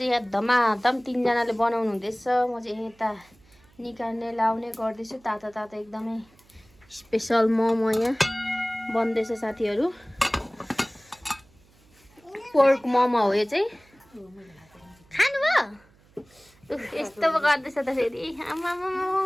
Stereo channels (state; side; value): noise; right; hum, 30 dB below the sound